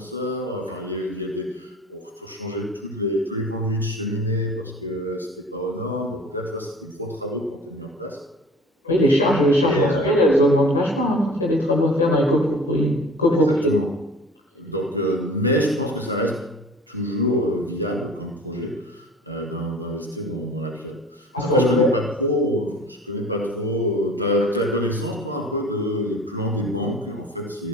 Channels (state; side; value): normal; both; correlation 0.44